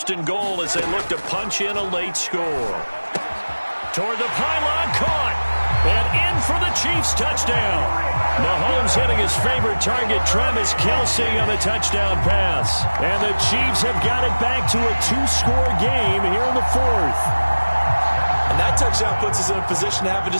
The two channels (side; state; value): both; inverted; correlation -1.00